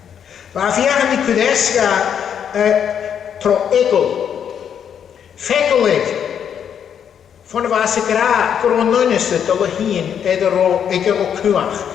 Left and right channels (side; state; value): right; quieter; 8.4 dB